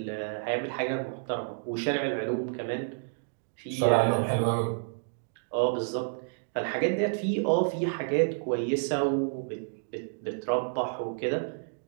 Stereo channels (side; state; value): left; silent; digital silence